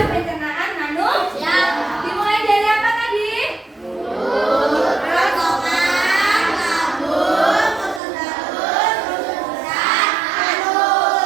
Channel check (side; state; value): left; drops out; at 8.0 s